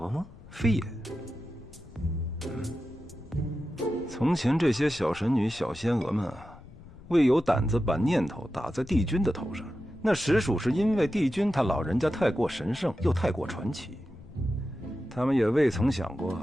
吗？非也。从前这些小神女、小仙娥们啊，未有胆子把念头打在帝君的头上，那实属是因为帝君他老人家太过神圣，又太过传奇。他们也未曾想过，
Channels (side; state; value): left; noise; rumble, 20 dB below the sound